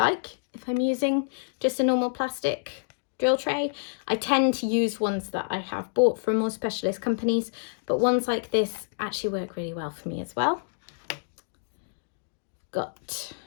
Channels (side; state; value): right; silent; digital silence